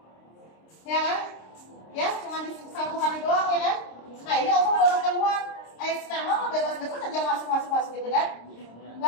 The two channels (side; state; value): right; late; 26 ms